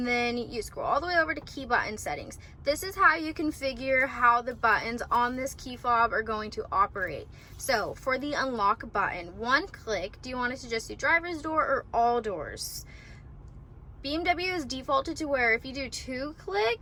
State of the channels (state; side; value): identical; both; correlation 1.00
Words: then you scroll all the way over to Key Button Settings. This is how you configure how the buttons on this key fob are going to operate. So for the unlock button, one click, do you want it to just do driver's door or all doors? BMW is defaulted to where if you do 2